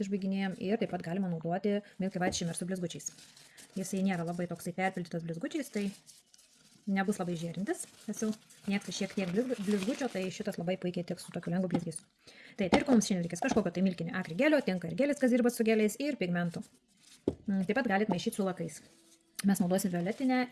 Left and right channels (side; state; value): both; identical; correlation 1.00